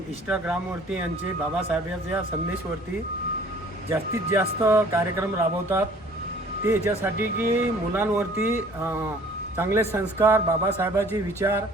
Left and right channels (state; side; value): normal; both; correlation 0.53